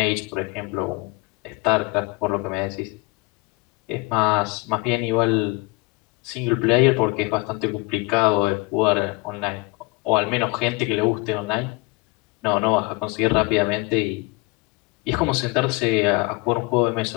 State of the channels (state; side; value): quieter; right; 24.9 dB